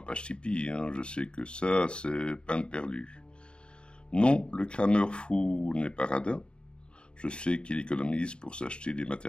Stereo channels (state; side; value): late; right; 0.052 ms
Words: page Tipeee, hein. Je sais que ça c'est peine perdue. Non, le crameur fou n'est pas radin. Je sais qu'il économise pour s'acheter des